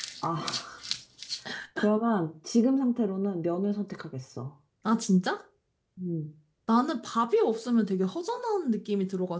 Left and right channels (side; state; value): both; identical; correlation 1.00